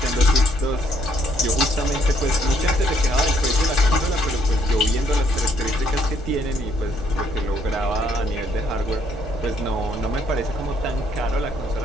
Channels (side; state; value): both; normal; correlation 0.68